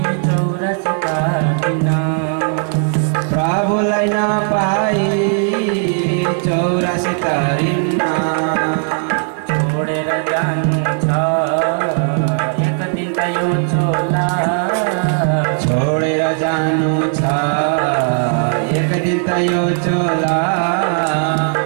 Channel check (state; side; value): silent; left; 56 dB below the other